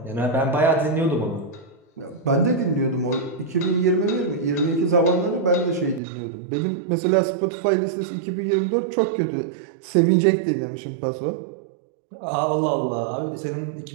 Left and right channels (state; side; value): drops out; left; at 6.0 s